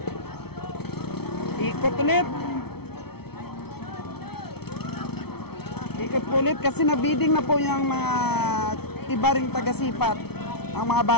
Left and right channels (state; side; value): late; right; 0.96 ms